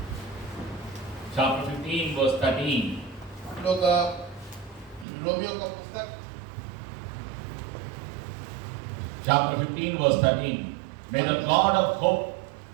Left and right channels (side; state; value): left; drops out; at 5.1 s